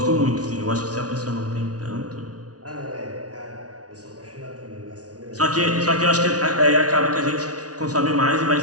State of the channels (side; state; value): left; late; 0.68 ms